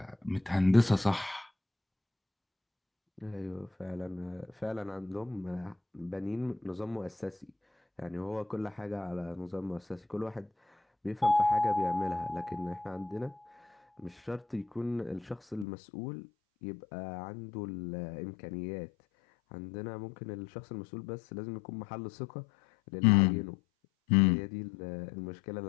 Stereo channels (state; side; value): drops out; right; at 15.7 s